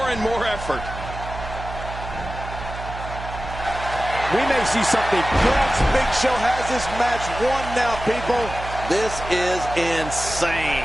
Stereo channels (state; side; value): noise; right; hum, 10 dB below the sound